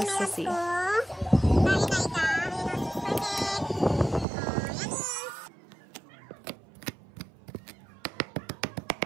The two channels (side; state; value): left; drops out; at 4.2 s